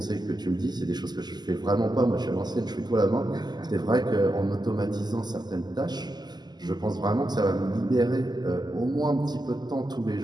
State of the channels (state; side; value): late; left; 0.20 ms